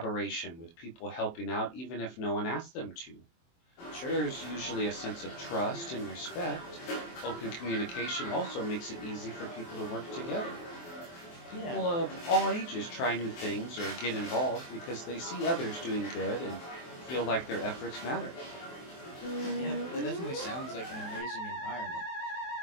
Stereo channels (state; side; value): late; right; 23 ms